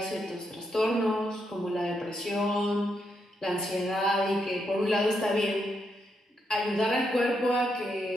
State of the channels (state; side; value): normal; both; correlation 0.80